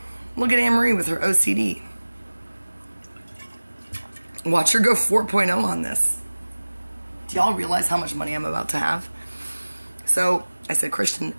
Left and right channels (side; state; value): both; inverted; correlation -1.00